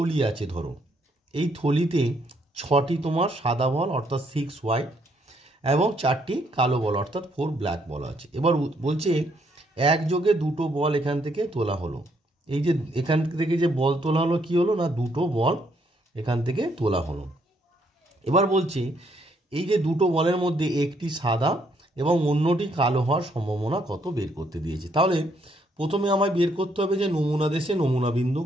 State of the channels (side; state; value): both; normal; correlation 0.71